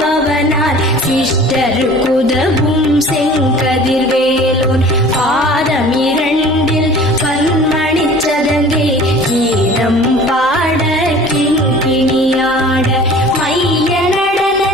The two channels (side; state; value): both; normal; correlation 0.45